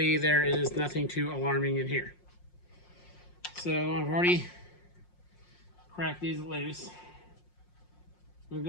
there is nothing too alarming in here. So I've already cracked these loose. I'm gonna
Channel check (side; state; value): right; late; 5.6 ms